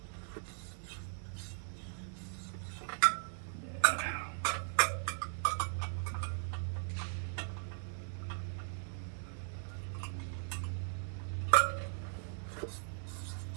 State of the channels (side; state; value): left; silent; 52 dB below the other